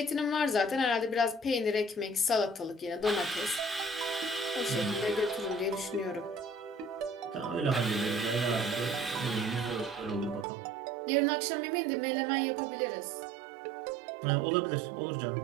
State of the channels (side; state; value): left; drops out; at 10.5 s